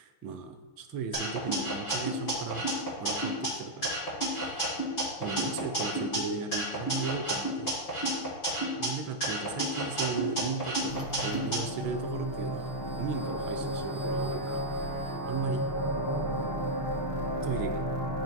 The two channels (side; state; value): right; late; 6.1 ms